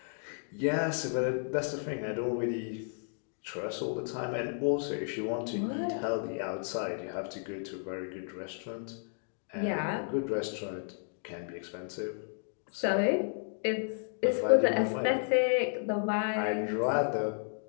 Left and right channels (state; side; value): silent; right; digital silence